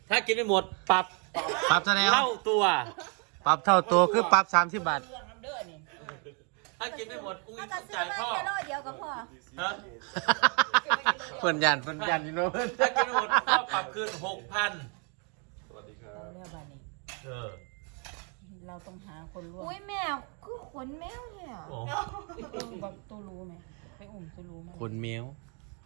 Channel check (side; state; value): left; quieter; 36.9 dB